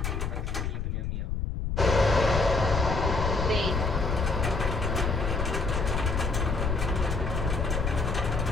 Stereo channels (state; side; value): noise; left; rumble, 2 dB below the sound